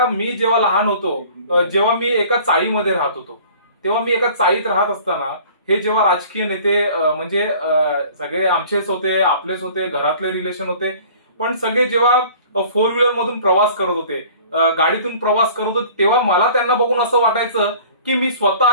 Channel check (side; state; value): both; inverted; correlation -0.48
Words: मी जेव्हा लहान होतो, जेव्हा मी एका चाळीमध्ये राहत होतो, तेव्हा मी एका चाळीत राहत असताना हे जेव्हा राजकीय नेते म्हणजे सगळे आमचेच होते, आपलेच होते, घरातले रिलेशन होते, पण सगळे जेव्हा 4 व्हीलर मधून प्रवास करत होते, गाडीतून प्रवास करत होते, तेव्हा मला त्यांना बघून असं वाटायचं की मी